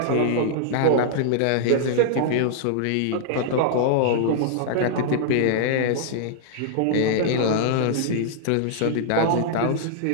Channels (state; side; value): different; both; correlation -0.01